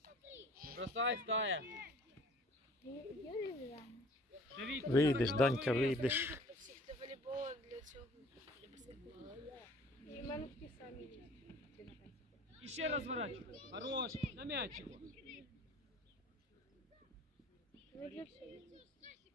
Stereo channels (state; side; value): normal; both; correlation 0.51